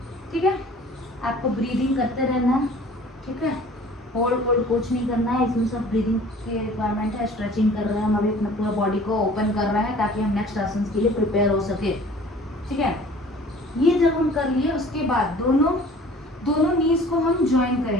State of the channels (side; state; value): both; normal; correlation 0.49